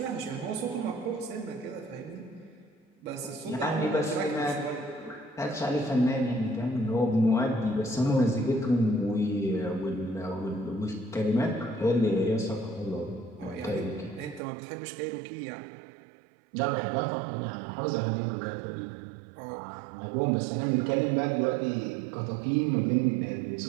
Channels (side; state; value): left; drops out; at 14.4 s